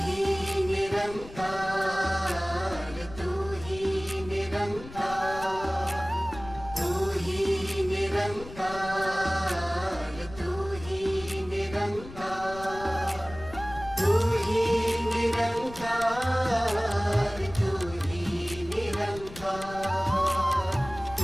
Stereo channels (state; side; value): noise; left; rumble, 15 dB below the sound